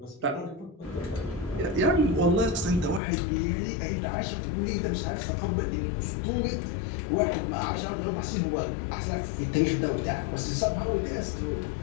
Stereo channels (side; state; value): right; drops out; at 3.0 s